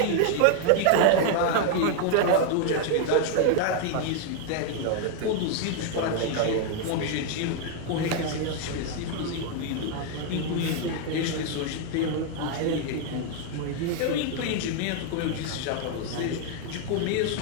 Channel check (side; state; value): both; different; correlation 0.00